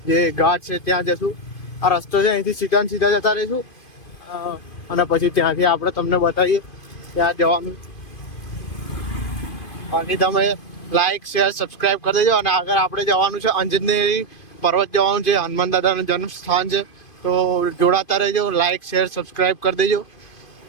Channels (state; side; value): late; right; 2.5 ms